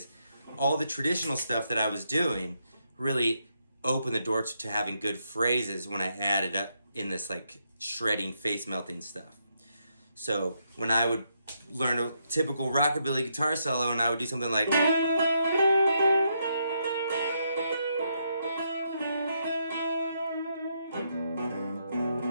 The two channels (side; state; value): both; inverted; correlation -0.78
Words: all the traditional stuff that I was doing really opened the door to having good phrases when I added up in this like shredding, face melting stuff. So when I would learn a typical rockabilly guitar solo and I would do something like,